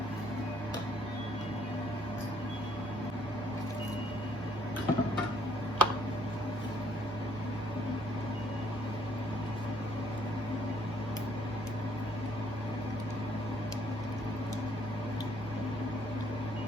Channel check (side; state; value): both; normal; correlation 0.65